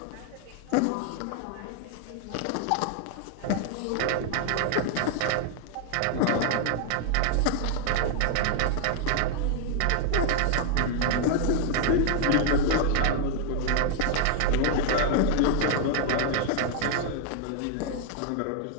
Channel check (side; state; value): both; different; correlation 0.00